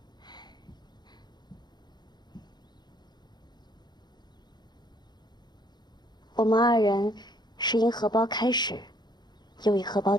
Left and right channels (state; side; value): late; right; 0.21 ms